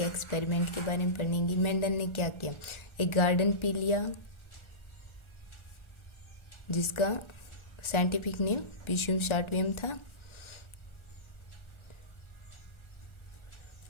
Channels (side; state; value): right; late; 1.4 ms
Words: एक्सपेरिमेंट के बारे में पढ़ेंगे। मेंडल ने क्या किया, एक गार्डन पी लिया जिसका साइंटिफिक नेम पिशियम शार्टवियम था।